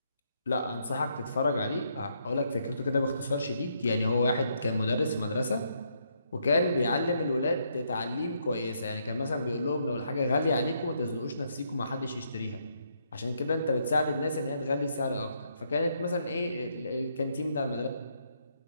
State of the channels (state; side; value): inverted; both; correlation -0.75